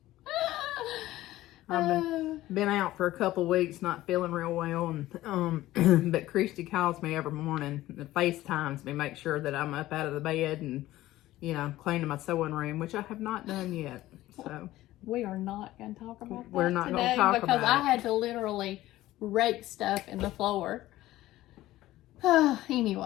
I've been out for a couple weeks, not feeling real well, and but Christy calls me every morning and FaceTimes me, make sure that I'm up out of the bed and, you know, cleaning my sewing room, which I have not done yet. So we are not going to talk about that we're not today going to talk because about I had to literally rake stuff in the floor.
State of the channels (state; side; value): quieter; right; 15.8 dB